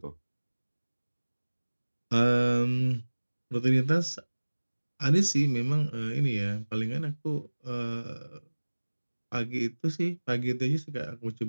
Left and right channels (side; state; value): both; inverted; correlation -1.00